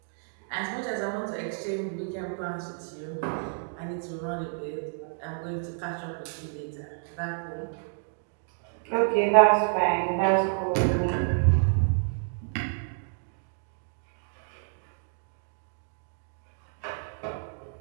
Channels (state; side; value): silent; left; digital silence